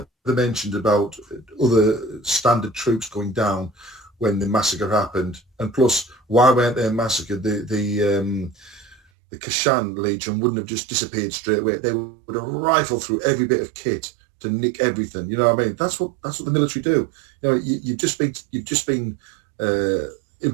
mentioned about other standard troops going down when the massacre happened, and plus, why weren't they massacred? The Kashan Legion wouldn't have just disappeared straight away. They would have rifled through every bit of kit to nick everything. You know what I mean? That's what the military do. You know, you've just been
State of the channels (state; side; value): drops out; left; at 9.0 s